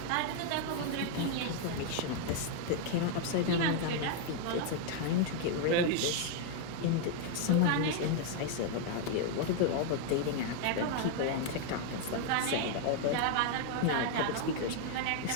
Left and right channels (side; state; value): both; different; correlation 0.00